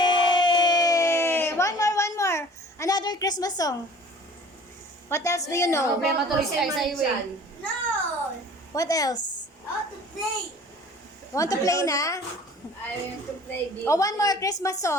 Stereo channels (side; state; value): both; normal; correlation 0.47